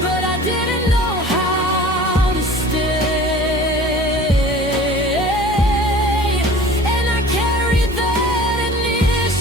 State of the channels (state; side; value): normal; both; correlation 0.44